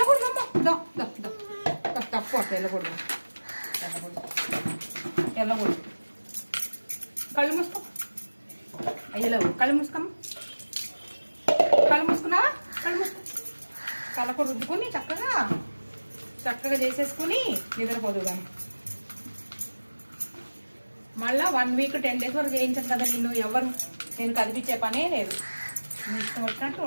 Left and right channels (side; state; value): both; inverted; correlation -1.00